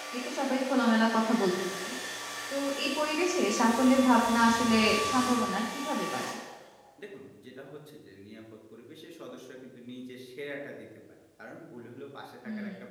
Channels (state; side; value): identical; both; correlation 1.00